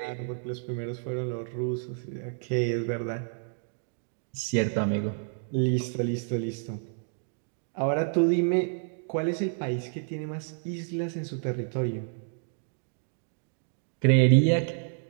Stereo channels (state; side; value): silent; left; digital silence